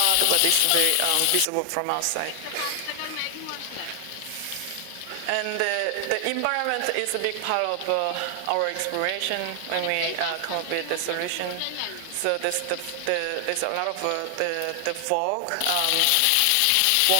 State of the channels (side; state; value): both; different; correlation 0.00